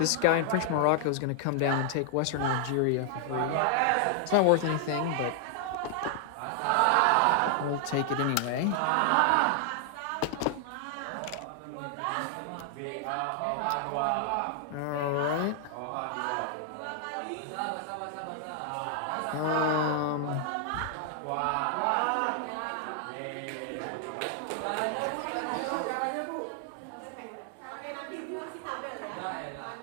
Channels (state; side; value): different; both; correlation 0.00